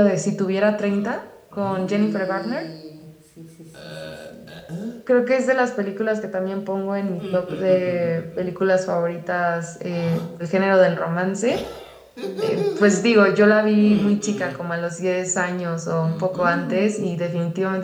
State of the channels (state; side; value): identical; both; correlation 1.00